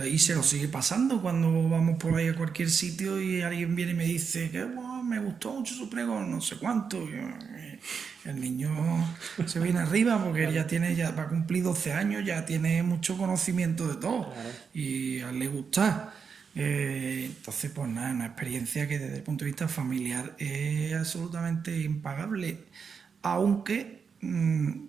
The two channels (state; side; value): quieter; left; 6.0 dB